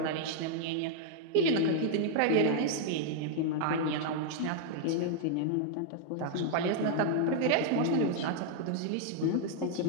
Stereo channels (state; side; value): different; both; correlation -0.01